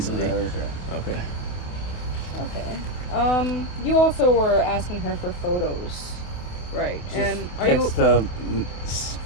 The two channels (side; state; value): right; late; 27 ms